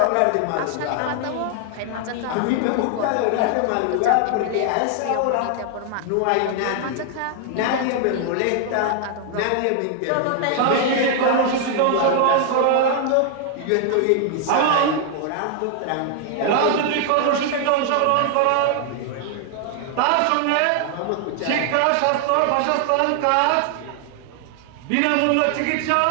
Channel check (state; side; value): different; both; correlation 0.00